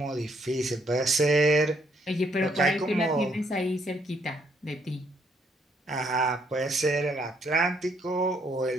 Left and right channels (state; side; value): normal; both; correlation 0.71